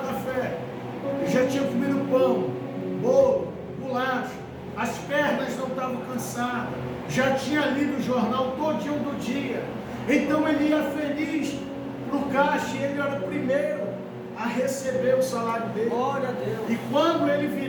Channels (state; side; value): identical; both; correlation 1.00